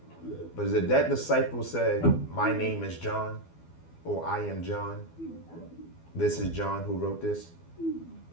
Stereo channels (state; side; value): late; right; 12 ms